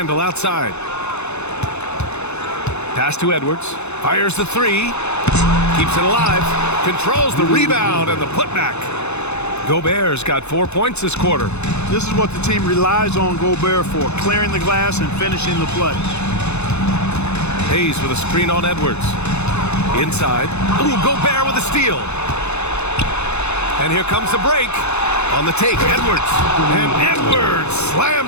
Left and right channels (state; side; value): late; right; 0.81 ms